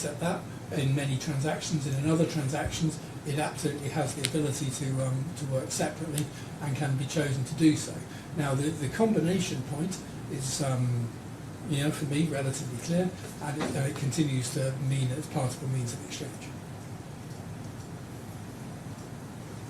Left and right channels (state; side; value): identical; both; correlation 1.00